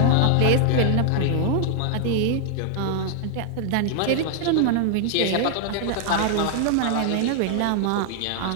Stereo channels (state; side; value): different; both; correlation 0.00